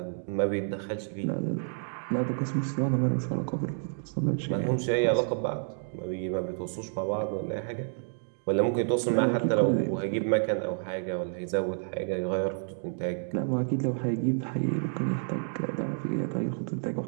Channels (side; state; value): left; silent; digital silence